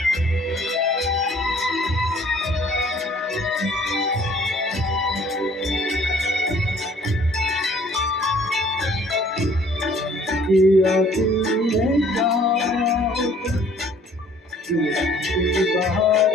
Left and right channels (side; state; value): both; normal; correlation 0.56